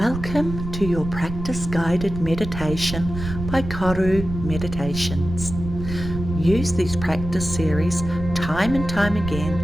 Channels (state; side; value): noise; right; rumble, 8 dB below the sound